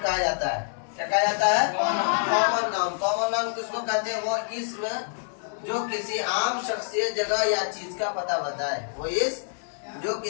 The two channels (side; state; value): right; silent; digital silence